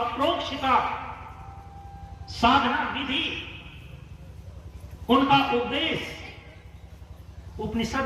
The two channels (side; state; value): both; identical; correlation 1.00